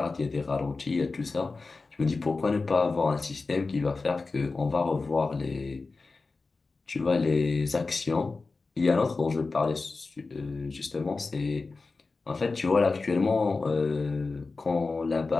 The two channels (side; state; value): right; quieter; 3.9 dB